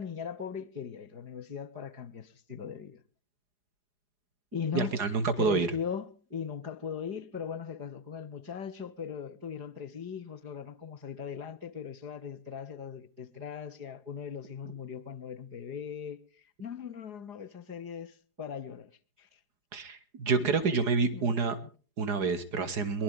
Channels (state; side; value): late; left; 4.9 ms